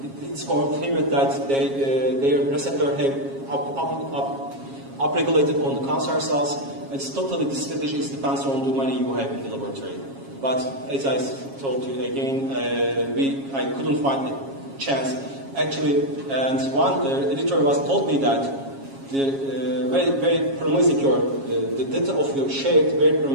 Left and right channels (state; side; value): late; left; 7.3 ms